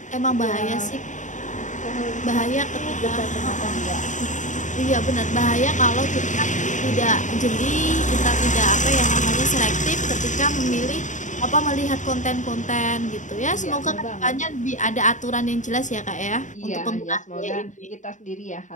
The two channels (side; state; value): right; late; 0.36 ms